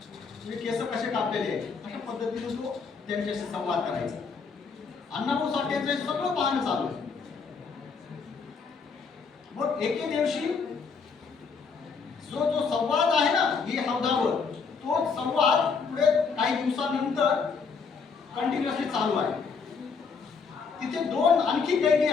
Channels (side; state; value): right; quieter; 5.3 dB